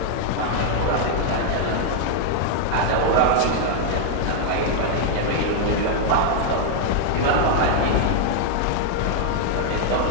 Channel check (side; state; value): both; different; correlation 0.00